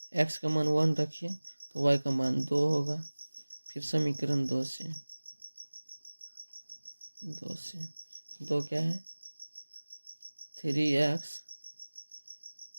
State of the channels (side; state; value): both; inverted; correlation -1.00